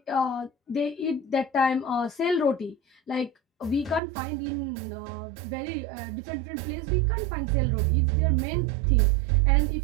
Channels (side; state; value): left; drops out; at 4.0 s